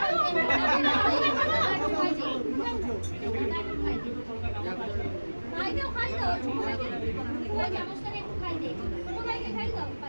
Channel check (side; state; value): both; inverted; correlation -1.00